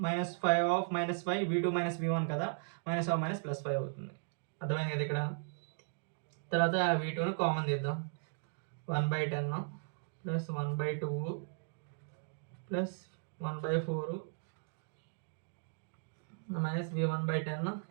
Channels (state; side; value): silent; left; digital silence